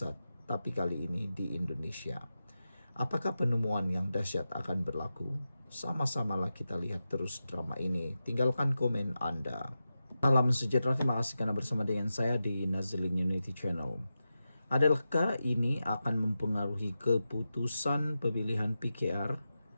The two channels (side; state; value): both; inverted; correlation -0.91